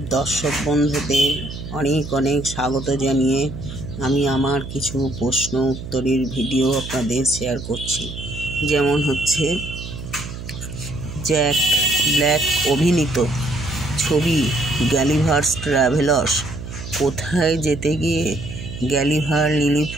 দর্শক বন্ধুদের অনেক অনেক স্বাগত জানিয়ে আমি আমার কিছু প্রশ্ন উত্তরের ভিডিও আপনাদের শেয়ার করছি। যেমন হচ্ছে, জ্যাক ব্ল্যাক অভিনীত ছবি গালিভার্স ট্রাভেলার্স কোথায় যেতে গিয়ে গালিভার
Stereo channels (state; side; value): noise; right; hum, 10 dB below the sound